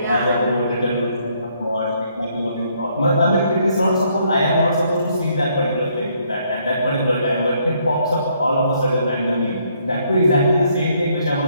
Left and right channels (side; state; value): both; inverted; correlation -0.69